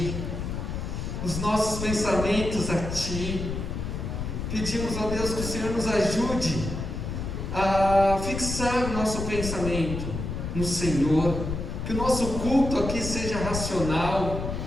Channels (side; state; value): left; noise; rumble, 4 dB below the sound